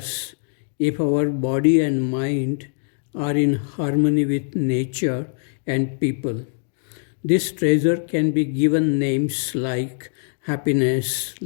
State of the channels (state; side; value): silent; right; digital silence